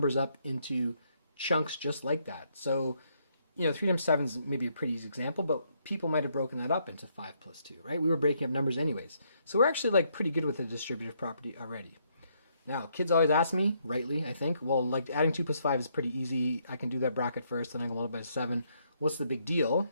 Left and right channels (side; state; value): both; inverted; correlation -0.73